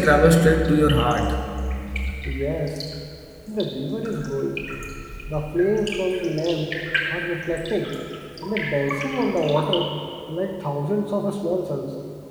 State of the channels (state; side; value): identical; both; correlation 1.00